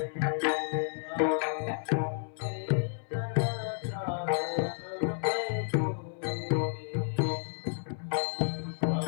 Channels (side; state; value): right; silent; 57 dB below the other